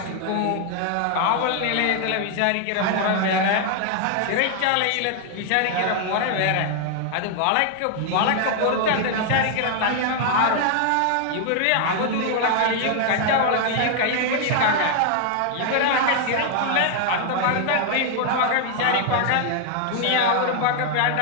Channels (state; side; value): different; both; correlation 0.00